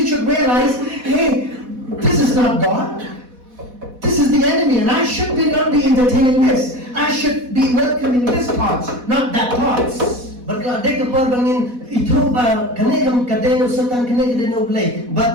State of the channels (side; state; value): left; late; 4.1 ms